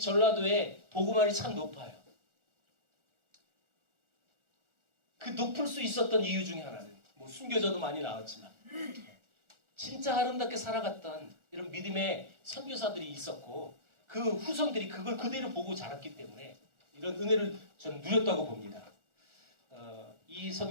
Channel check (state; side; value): late; left; 1.4 ms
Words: 복음화율이 참 높아요. 그 높을 수 있었던 이유 중에 하나는 뭐 순교자도 많이 나왔지만 진짜 아름답게 살아갔던 이런 믿음의 선교사들이 있었고 그 후손들이 그걸 그대로 보고 자랐기 때문에 이런 은혜를 저는 누렸다고 봅니다. 이